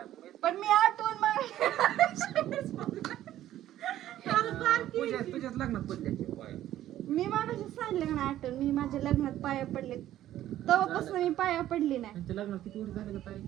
माहित. पण मी आठवून मग पूजा तुझ्याच लग्नात पडल्याचे पाय. मी मागाशी सांगले का नाही आठवून, मी माझ्या लग्नात पाया पडले. तेव्हापासून मी पाया पडली नाही. त्यांच्या लग्नात किती वर्ष झाले का ताई?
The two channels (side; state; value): left; quieter; 13.0 dB